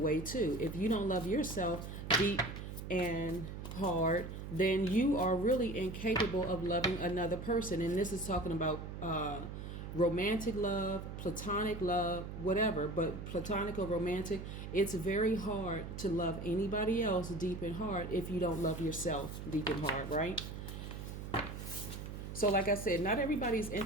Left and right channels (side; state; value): right; noise; hum, 8 dB below the sound